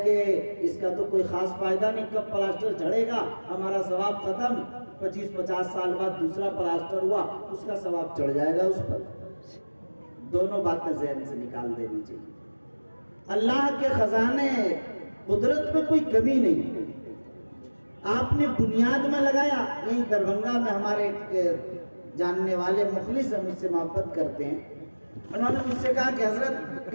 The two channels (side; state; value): both; inverted; correlation -1.00